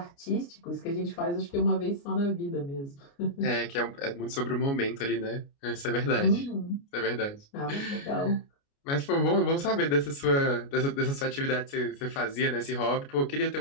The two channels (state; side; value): late; right; 29 ms